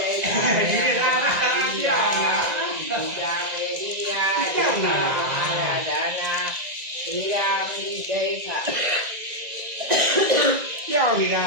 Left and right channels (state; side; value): late; left; 1.9 ms